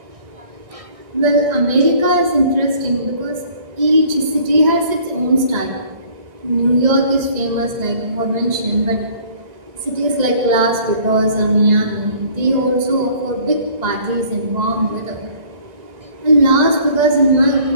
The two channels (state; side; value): late; left; 1.9 ms